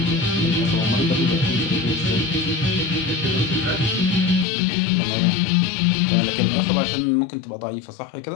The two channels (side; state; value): right; drops out; at 4.5 s